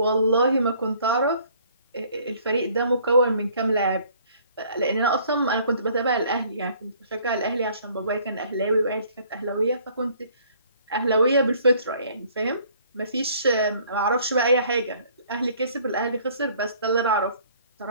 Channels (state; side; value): inverted; both; correlation -0.58